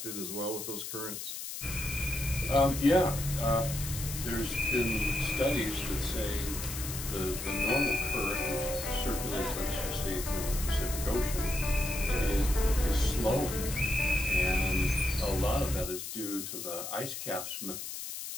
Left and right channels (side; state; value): left; noise; hiss, 7 dB below the sound